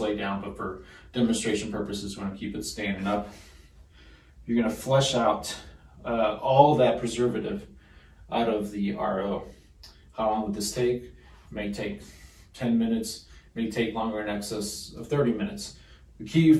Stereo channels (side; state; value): both; identical; correlation 1.00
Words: down, but for demonstration purposes, we want to keep it standing up. You're going to flush out all that preservative out of the RO. How long would this take? It may take 10 minutes, it may take longer, in excess of 30 minutes. The key